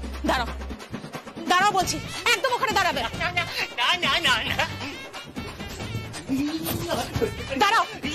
দাঁড়াও দাঁড়াও বলছি, একদম ওখানে দাঁড়াবে। না না না না, দাঁড়াও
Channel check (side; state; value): both; identical; correlation 1.00